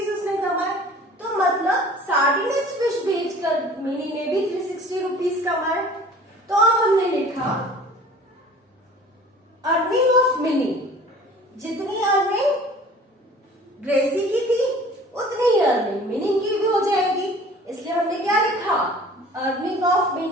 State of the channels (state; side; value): normal; both; correlation 0.46